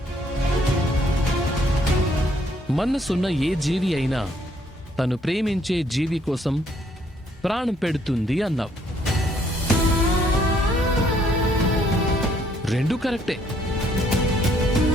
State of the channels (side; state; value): both; normal; correlation 0.67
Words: మనసున్న ఏ జీవి అయినా తను ప్రేమించే జీవి కోసం ప్రాణం పెడుతుంది అన్నావు. 2 కరెక్టే.